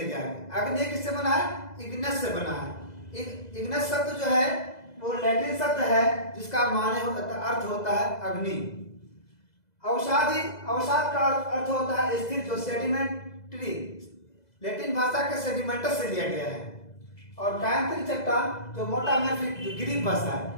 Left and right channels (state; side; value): late; right; 2.0 ms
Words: आए। अग्नि किससे बना है? इग्नस से बना है। इग्नस शब्द जो है वो लैटिन शब्द है जिसका अर्थ होता है अग्नि। अवसाद का अर्थ होता है स्थिर, जो सेडिमेंट्री, लैटिन भाषा के सेडिमेंटस से लिया गया है। और कायांतरित चट्टान जो मेटामॉर्फिक, जो ग्रीक भाषा है।